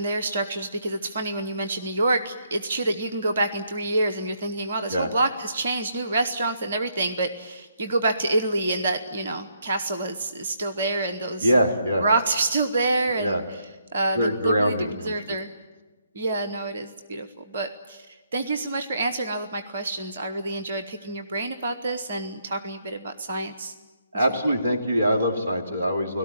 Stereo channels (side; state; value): both; inverted; correlation -0.74